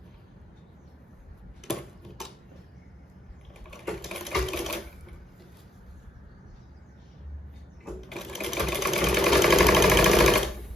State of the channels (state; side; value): normal; both; correlation 0.73